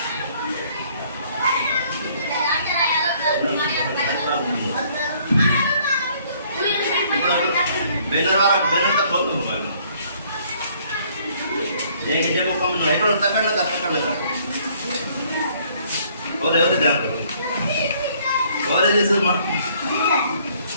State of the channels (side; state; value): both; inverted; correlation -0.62